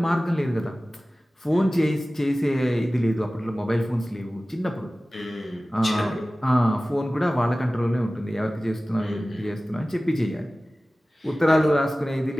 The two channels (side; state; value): both; normal; correlation 0.97